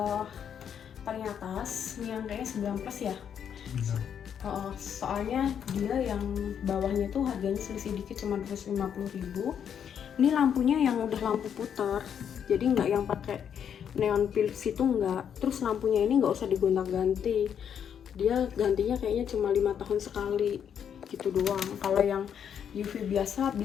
paling atas, ini yang kayaknya 9 plus ya. Soalnya dia yang bawahnya tuh harganya selisih dikit, cuma 250.000. Ini lampunya yang udah lampu putar, jadi nggak yang pakai neon Philips itu enggak. Terus lampunya ini nggak usah digonta-ganti, dia gantinya kayaknya cuma 5 tahun sekali gitu doang. Kalau yang UV biasanya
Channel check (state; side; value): quieter; right; 8.3 dB